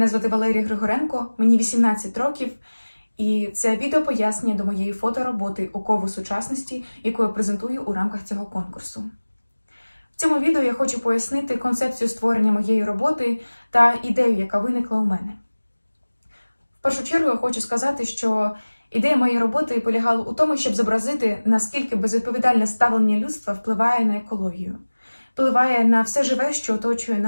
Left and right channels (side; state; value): both; inverted; correlation -1.00